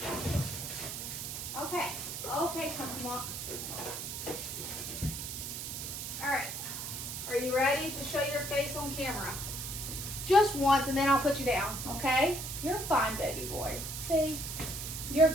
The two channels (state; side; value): noise; right; hiss, 6 dB below the sound